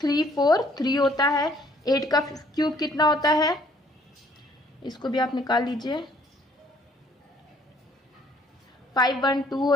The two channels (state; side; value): normal; both; correlation 0.62